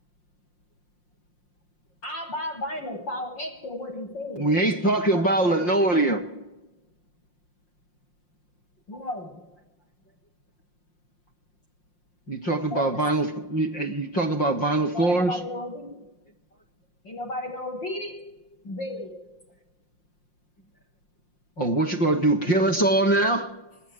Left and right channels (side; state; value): right; late; 5.6 ms